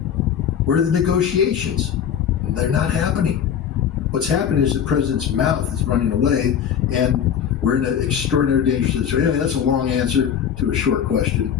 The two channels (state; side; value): quieter; right; 8.5 dB